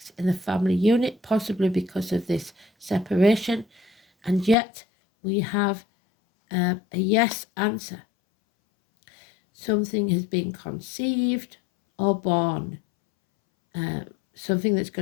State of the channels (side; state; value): right; drops out; at 4.5 s